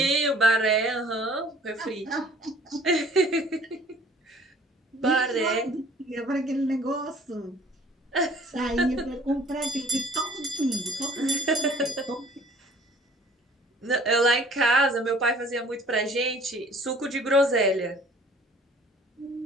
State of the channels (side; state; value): both; normal; correlation 0.53